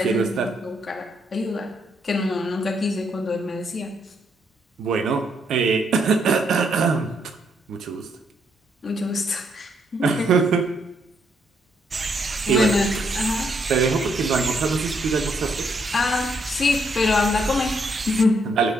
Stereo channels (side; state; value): both; normal; correlation 0.74